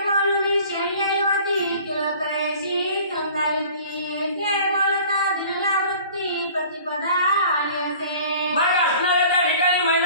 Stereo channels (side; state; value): both; inverted; correlation -0.47